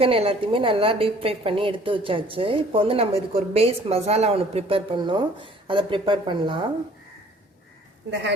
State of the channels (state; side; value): normal; both; correlation 0.54